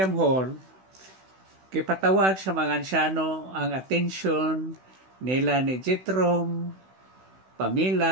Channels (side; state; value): left; late; 16 ms